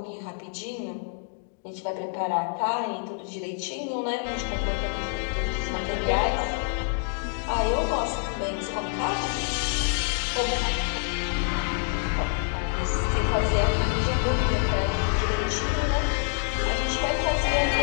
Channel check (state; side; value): silent; right; 60 dB below the other